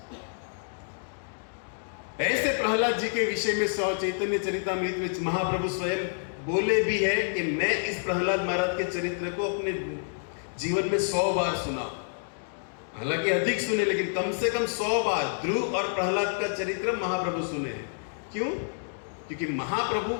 ऐसे प्रहलाद जी के विषय में चैतन्य चरितामृत में महाप्रभु स्वयं बोले भी है कि मैं इस प्रहलाद महाराज के चरित्र को अपने जीवन में 100 बार सुना। हालांकि अधिक सुने, लेकिन कम से कम 100 बार ध्रुव और प्रहलाद का चरित्र महाप्रभु सुने हैं। क्यों? क्योंकि महाप्रभु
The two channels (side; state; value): right; silent; digital silence